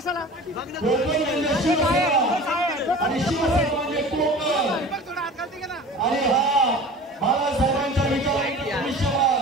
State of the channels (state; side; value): normal; both; correlation 0.39